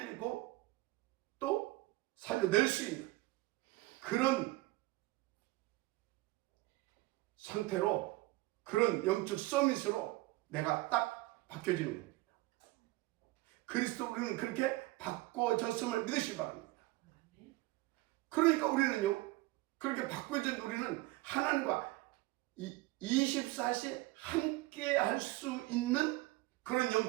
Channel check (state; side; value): quieter; left; 20.0 dB